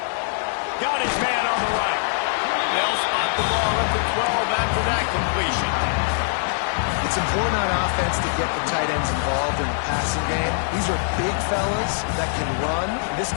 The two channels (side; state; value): right; silent; 64 dB below the other